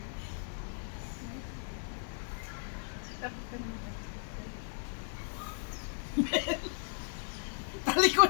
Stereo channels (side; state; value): right; silent; 54 dB below the other